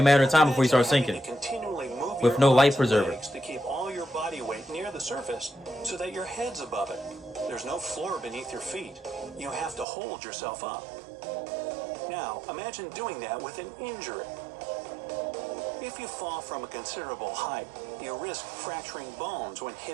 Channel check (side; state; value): left; drops out; at 9.9 s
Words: a matter of time before you start Imagine having sinking. to continually move With your no life arms and preserver. legs to keep all your body weight near the surface so that your head's above it. There's no floor beneath your feet. You have to hold yourself up. Now, imagine doing that with an injury. If you fall from a considerable height, you risk fracturing bones when